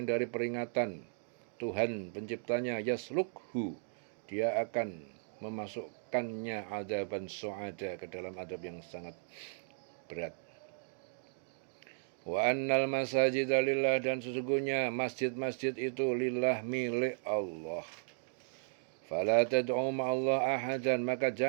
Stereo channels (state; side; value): silent; left; digital silence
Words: dari peringatan Tuhan penciptanya, yaslukhu, dia akan memasukkannya adzaban su'ada, ke dalam adab yang sangat berat. Wa annal masajida lillah, dan sesungguhnya masjid-masjid itu lillah, milik Allah. Fala tad'u ma'allah ahadan, maka